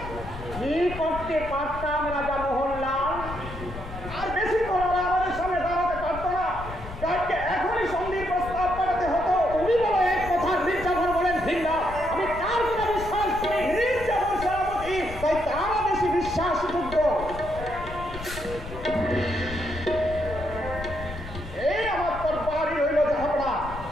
কি করতে পারতাম রাজা মোহনলাল আর বেশি করে আমাদের সামনে দাঁড়াতে পারতো না তাকে এখনই সন্ধির প্রস্তাব পাঠাতে হতো তুমি বলো এক কথা মির্জাফর বলেন ভিন্ন আমি কার কথা বিশ্বাস করি মির্জাফর সেনাপতি তাই তারা বেশি বিশ্বাসযোগ্য এই আমার তরবারি হইল জাহাপনা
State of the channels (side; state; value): left; noise; rumble, 11 dB below the sound